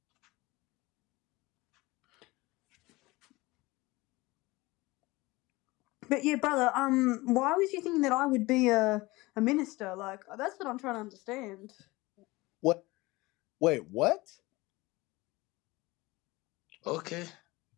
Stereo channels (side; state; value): right; quieter; 21.4 dB